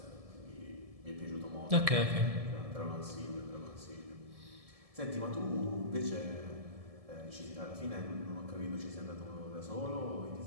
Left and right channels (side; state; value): left; late; 1.7 ms